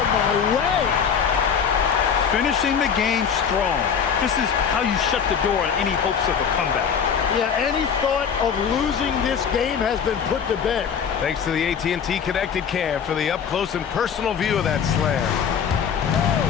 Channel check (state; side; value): quieter; right; 7.2 dB